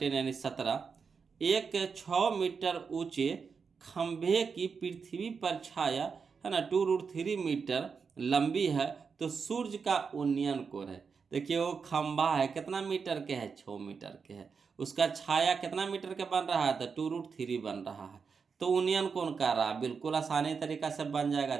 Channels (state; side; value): quieter; left; 5.6 dB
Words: यानी 17, एक 6 मीटर ऊंचे खंभे की पृथ्वी पर छाया, है ना, 2√3 मीटर लंबी है, तो सूर्य का उन्नयन कोण है। देखिए वो खंभा है कितना मीटर के है, 6 मीटर के है, उसका छाया कितना मीटर के बन रहा है, तो 2√3 बन रहा है, तो उन्नयन कोण कर रहा है। बिल्कुल आसानी तरीका से बन जाएगा,